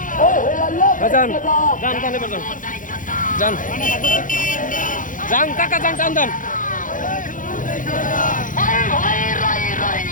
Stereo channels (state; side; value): late; right; 0.38 ms